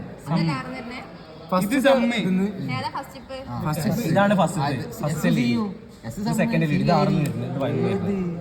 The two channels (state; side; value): identical; both; correlation 1.00